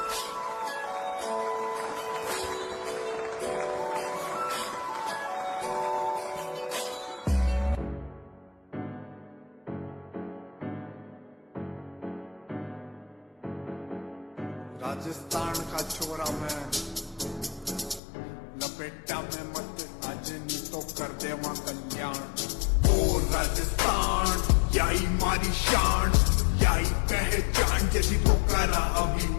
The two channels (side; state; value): right; drops out; at 18.0 s